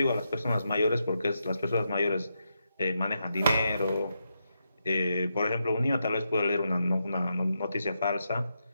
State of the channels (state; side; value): inverted; both; correlation -0.84